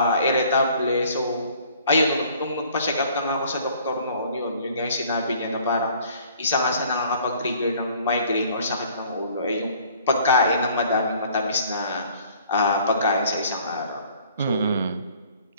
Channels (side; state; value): both; inverted; correlation -0.55